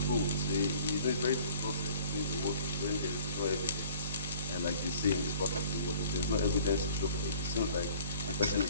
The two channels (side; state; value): both; inverted; correlation -0.51